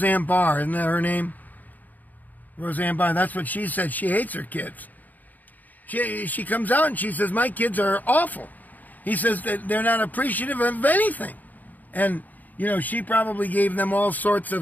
Barr, isn't that her name? Roseanne Barr, that's what she said. She hates her kids. She comes out and she says, my kids are awful. He says that they're not appreciative of anything. And, you know, she probably gave them all sorts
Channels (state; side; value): late; right; 0.082 ms